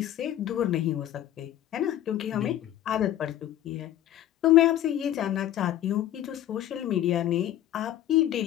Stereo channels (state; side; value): quieter; right; 12.5 dB